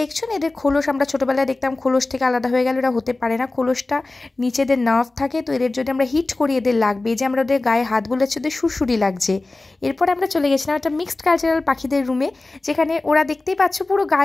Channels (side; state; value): right; quieter; 3.1 dB